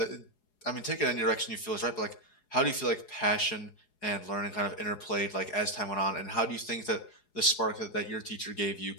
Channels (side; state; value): right; late; 4.8 ms